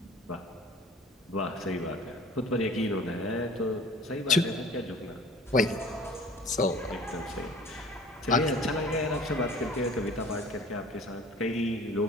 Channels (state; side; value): normal; both; correlation 0.46